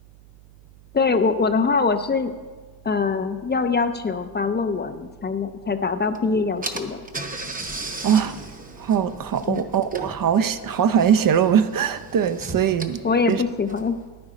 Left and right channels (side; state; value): right; noise; hum, 26 dB below the sound